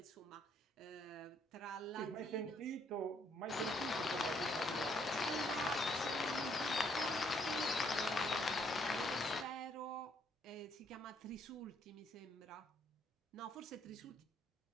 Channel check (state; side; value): normal; both; correlation 0.69